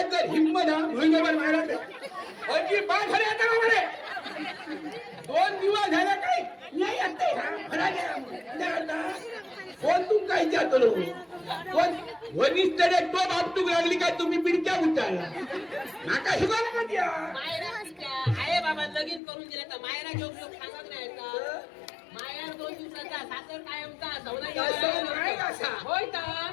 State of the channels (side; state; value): right; drops out; at 19.2 s